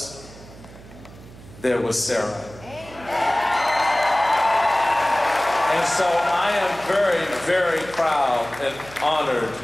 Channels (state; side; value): noise; right; hum, 19 dB below the sound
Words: There was Sarah. And so I am very, very proud and honored